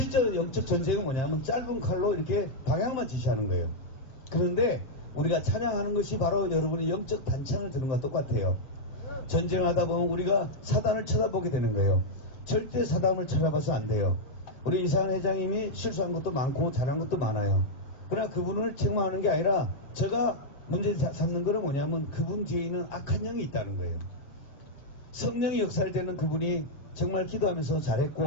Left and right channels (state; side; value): late; right; 7.6 ms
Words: 영적 전쟁은 뭐냐면 짧은 칼로 이렇게 방향만 지시하는 거예요. 그런데 우리가 찬양하는 것이 바로 여러분이 영적 단창을 드는 것과 똑같아요. 전쟁하다 보면 우리가 사단을 쳐다보게 되는 거예요. 절대 사단을 쳐다봐서 안 돼요. 우리 이상한 회장님이 실수한 것도 많고 잘한 것도 많아요. 그러나 그분을 책망하는 게 아니라 제가 문제 삼는 거는 뭐냐면 그분 뒤에 있는 악한 영이 있다는 거예요. 성령이 역사할 때는 그분이 정말 기도하면서